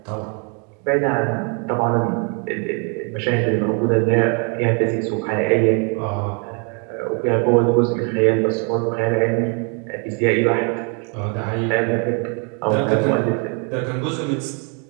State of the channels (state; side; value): quieter; left; 36.8 dB